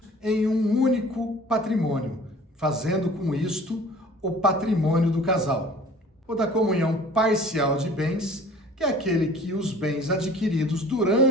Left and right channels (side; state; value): both; normal; correlation 0.47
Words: em um único patrimônio, fazendo com isto o patrimônio do casal. O da comunhão parcial de bens, que é aquele que os bens adquiridos